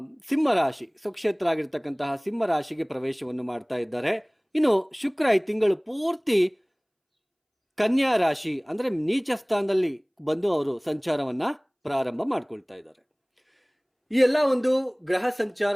ಸಿಂಹ ರಾಶಿ ಸ್ವಕ್ಷೇತ್ರ ಆಗಿರ್ತಕ್ಕಂತಹ ಸಿಂಹ ರಾಶಿಗೆ ಪ್ರವೇಶವನ್ನು ಮಾಡ್ತಾ ಇದ್ದಾರೆ. ಇನ್ನು ಶುಕ್ರ ಈ ತಿಂಗಳು ಪೂರ್ತಿ ಕನ್ಯಾ ರಾಶಿ ಅಂದ್ರೆ ನೀಚ ಸ್ಥಾನದಲ್ಲಿ ಬಂದು ಅವರು ಸಂಚಾರವನ್ನ ಪ್ರಾರಂಭ ಮಾಡ್ಕೊಳ್ತಾ ಇದ್ದಾರೆ. ಈ ಎಲ್ಲ ಒಂದು ಗ್ರಹ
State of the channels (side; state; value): both; identical; correlation 1.00